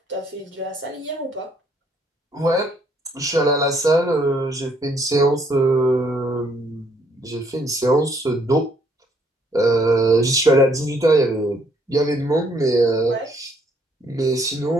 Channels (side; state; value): both; normal; correlation 0.67